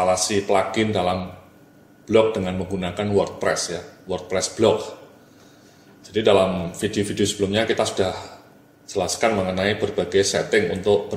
plugin dalam blog dengan menggunakan WordPress ya, WordPress blog. Jadi dalam video-video sebelumnya kita sudah jelaskan mengenai berbagai setting untuk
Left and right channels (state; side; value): identical; both; correlation 1.00